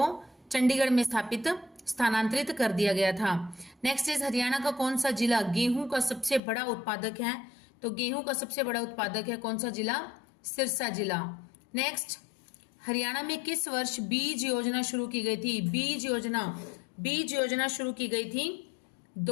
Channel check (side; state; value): right; drops out; at 6.4 s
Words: चंडीगढ़ में स्थानांतरित कर दिया गया था। नेक्स्ट इज हरियाणा का कौन सा जिला गेहूं का सबसे बड़ा उत्पादक है? तो गेहूं का सबसे बड़ा उत्पादक है कौन सा जिला? सिरसा जिला। नेक्स्ट, हरियाणा में किस वर्ष बीज योजना शुरू की गई थी? बीज योजना शुरू की गई थी